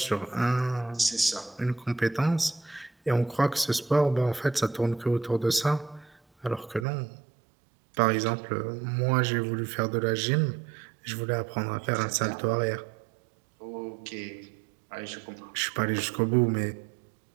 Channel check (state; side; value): drops out; left; at 6.9 s